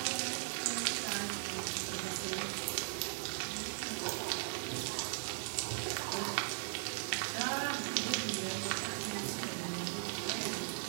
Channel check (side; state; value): left; silent; digital silence